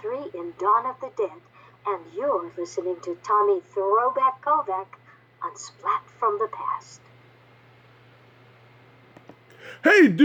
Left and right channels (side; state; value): both; identical; correlation 1.00